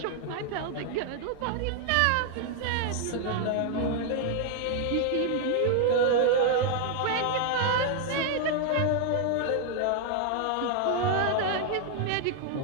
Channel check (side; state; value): both; different; correlation 0.00